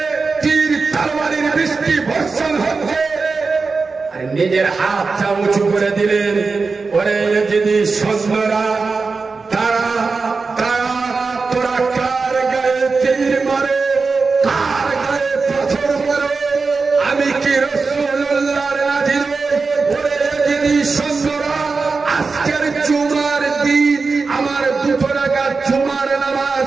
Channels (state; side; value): quieter; left; 4.4 dB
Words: তীর তরবারির বৃষ্টি বর্ষণ হচ্ছে নিজের হাতটা উঁচু করে দিলেন ওরে যদি সন্ধ্যরা তারা তোরা কার গায়ে তীর মারে কার গায়ে পাথর মারো আমি কি রাসূলুল্লাহর নাজির ওরে যদি সন্ধ্যরা আজকের জুমার দিন আমার দুটো রাকাত জুমার